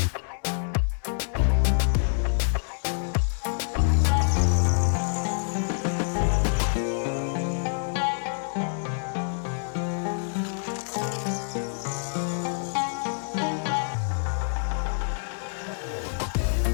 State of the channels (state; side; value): silent; right; digital silence